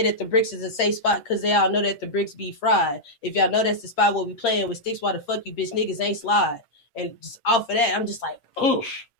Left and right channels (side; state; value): right; late; 8.7 ms